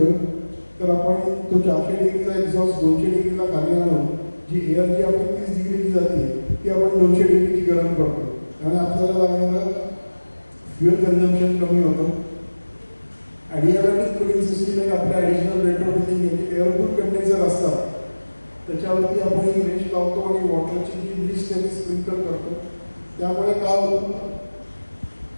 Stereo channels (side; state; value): both; inverted; correlation -1.00